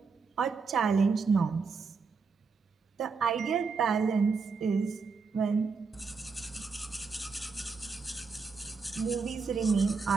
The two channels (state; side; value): quieter; left; 4.9 dB